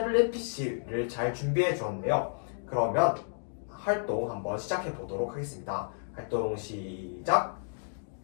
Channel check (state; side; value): silent; right; digital silence